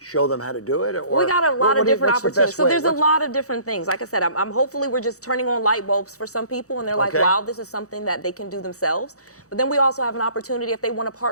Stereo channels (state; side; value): late; right; 0.65 ms